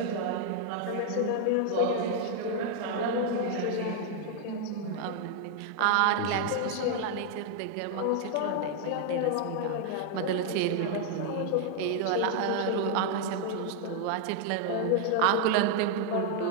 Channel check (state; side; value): different; both; correlation 0.00